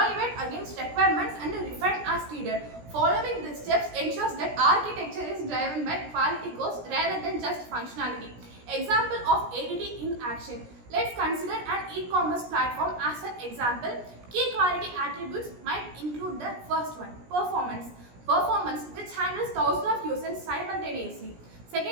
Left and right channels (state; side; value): late; left; 17 ms